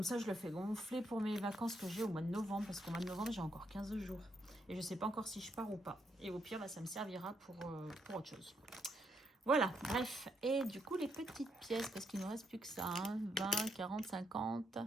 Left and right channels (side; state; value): both; normal; correlation 0.78